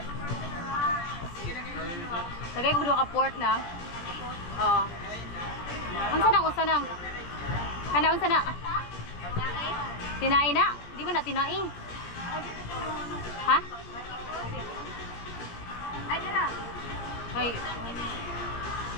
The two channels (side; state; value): right; late; 17 ms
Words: Lagay ko dua ka pork na. Oh. Unsa nang? Kana unsa na? Tinai na? Di ba na tinai? Ha? Ay dira.